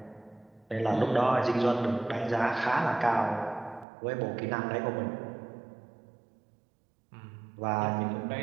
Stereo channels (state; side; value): drops out; left; at 3.9 s